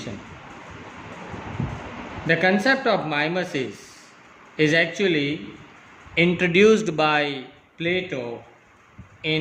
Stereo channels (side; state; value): both; identical; correlation 1.00